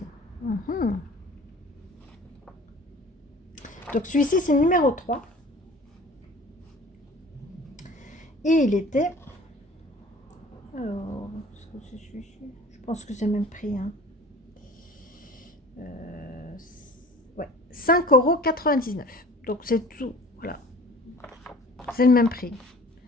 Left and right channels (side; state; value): both; normal; correlation 0.45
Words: Donc celui-ci, c'est le numéro 3. Et il était... Alors, est-ce que c'est celui-ci? Je pense que c'est le même prix. Hein. Ouais, 5,99 €. Donc c'est tout. Voilà. C'est le même prix.